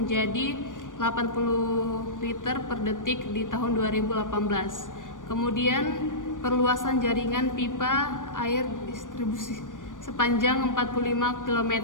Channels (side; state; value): right; late; 0.88 ms